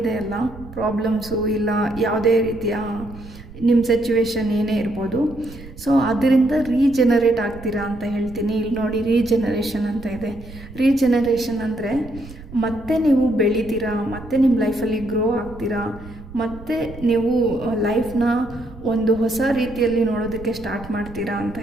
ಅಲ್ಲ ಪ್ರಾಬ್ಲಮ್ಸು, ಇಲ್ಲ ಯಾವುದೇ ರೀತಿಯ ನಿಮ್ಮ ಸಿಚುವೇಶನ್ ಏನೇ ಇರ್ಬೋದು, ಸೊ ಅದರಿಂದ ರೀಜನರೇಟ್ ಆಗ್ತೀರಾ ಅಂತ ಹೇಳ್ತೀನಿ. ಇಲ್ಲಿ ನೋಡಿ ರೀಜನರೇಷನ್ ಅಂತ ಇದೆ. ರೀಜನರೇಷನ್ ಅಂದರೆ ಮತ್ತೆ ನೀವು ಬೆಳಿತೀರಾ, ಮತ್ತೆ ನಿಮ್ಮ ಲೈಫಲ್ಲಿ ಗ್ರೋ ಆಗ್ತೀರಾ, ಮತ್ತು ನೀವು ಲೈಫ್ನ ಒಂದು ಹೊಸ ರೀತಿಯಲ್ಲಿ ನೋಡೋದಕ್ಕೆ ಸ್ಟಾರ್ಟ್ ಮಾಡ್ತೀರಾ ಅಂತ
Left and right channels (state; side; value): noise; right; rumble, 16 dB below the sound